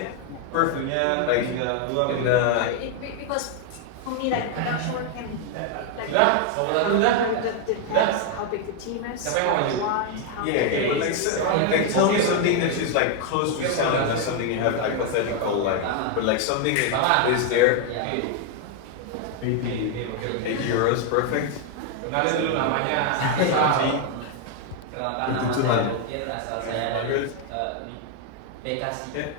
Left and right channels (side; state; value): both; different; correlation 0.01